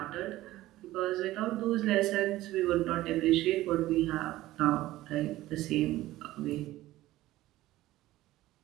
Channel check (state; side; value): quieter; left; 16.2 dB